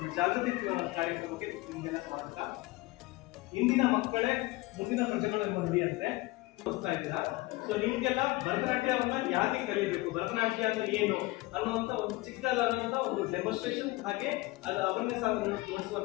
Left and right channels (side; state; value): right; quieter; 20.8 dB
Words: ಜಾಗೃತಿ ಕಾರ್ಯಕ್ರಮಕ್ಕೆ ನಿಮಗೆಲ್ಲ ಸ್ವಾಗತ. ಇಂದಿನ ಮಕ್ಕಳೇ ಮುಂದಿನ ಪ್ರಜೆಗಳು ಎಂಬುದು ಅಂದ್ರೆ ತೋರಿಸ್ತಾ ಇದ್ದೀರಾ. ಸೊ ನಿಮ್ಗೆಲ್ಲ ಭರತನಾಟ್ಯವನ್ನ ಯಾಕೆ ಕಲಿಬೇಕು, ಭರತನಾಟ್ಯ ಅಂದ್ರೆ ಏನು ಅನ್ನುವಂತ ಒಂದು ಚಿಕ್ಕದಾದಂತ ಒಂದು ಡೆಮೋನ್ಸ್ಟ್ರೇಷನ್ ಹಾಗೆ ಅದು ಅವೇರ್ನೆಸ್